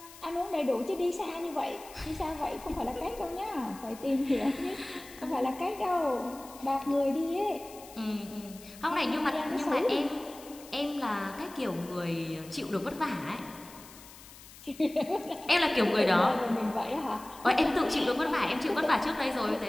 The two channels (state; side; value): noise; left; hiss, 19 dB below the sound